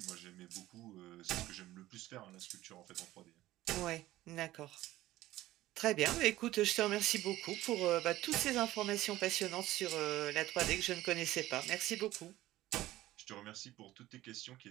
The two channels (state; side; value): quieter; left; 15.9 dB